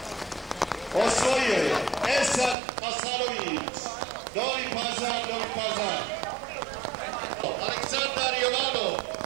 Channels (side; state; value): left; drops out; at 2.6 s